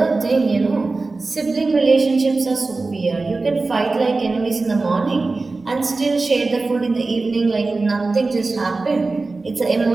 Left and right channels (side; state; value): left; quieter; 3.6 dB